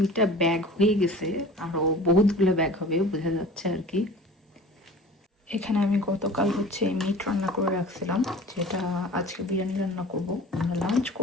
ব্যাগ হয়ে গেছে, আরও বহুতগুলো ব্যাগ হবে বোঝা যাচ্ছে আর কি। এখানে আমি গতকাল হচ্ছে মিট রান্না করে রাখছিলাম, যেটা আজকে বিরিয়ানি রান্না করব। আমরা লাঞ্চ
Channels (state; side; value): normal; both; correlation 0.41